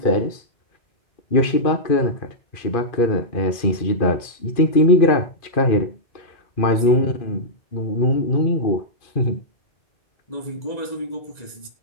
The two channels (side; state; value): right; late; 2.4 ms